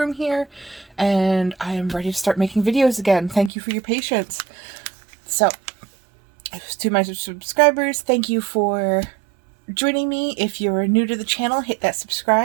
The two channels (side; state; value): left; drops out; at 3.5 s